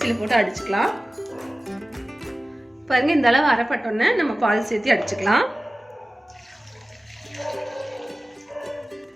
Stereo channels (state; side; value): normal; both; correlation 0.97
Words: போட்டு அடிச்சுக்கலாம். பாருங்க இந்த அளவு அரைப்பட்டோன்னே நம்ம பால் சேர்த்து அடிச்சுக்கலாம்.